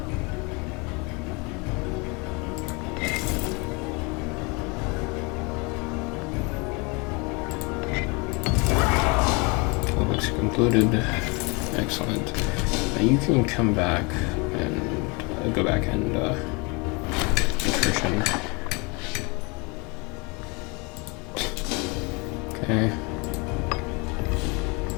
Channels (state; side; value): quieter; right; 29.4 dB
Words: Concluded. Excellent. Now you can come back and go back and attrition. Okay.